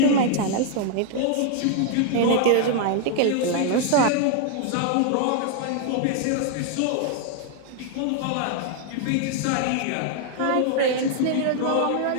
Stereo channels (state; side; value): different; both; correlation 0.00